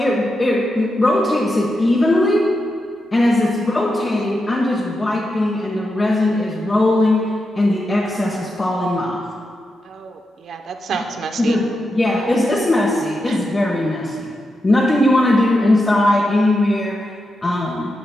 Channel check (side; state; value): both; normal; correlation 0.87